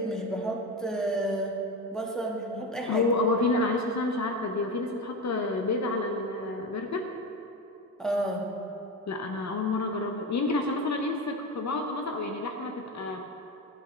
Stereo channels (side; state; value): both; normal; correlation 0.21